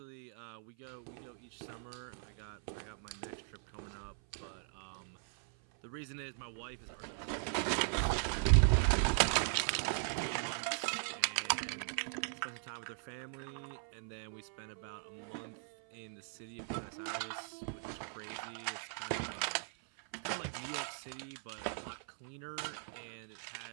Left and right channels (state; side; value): silent; left; 51 dB below the other